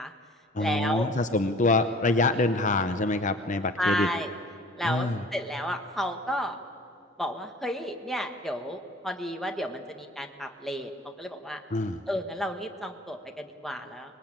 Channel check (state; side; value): normal; both; correlation 0.47